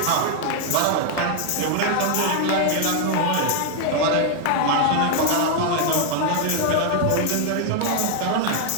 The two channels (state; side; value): different; both; correlation 0.00